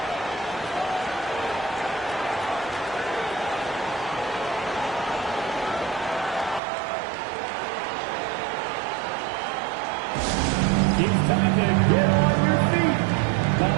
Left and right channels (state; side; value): drops out; left; at 6.6 s